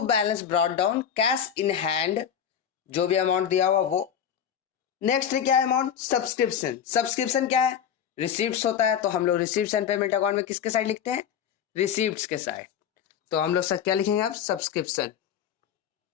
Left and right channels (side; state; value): right; quieter; 8.6 dB